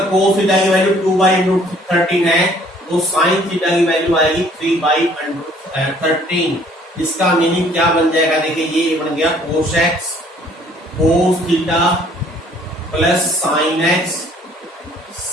कोस थीटा की वैल्यू 2 बाई अंडर रूट 13 है, तो साइन थीटा की वैल्यू आएगी 3 बाई अंडर रूट 13। इसका मीनिंग क्या बन जाएगा, देखिए ये बन गया cos x cos theta plus sine x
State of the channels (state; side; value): normal; both; correlation 0.59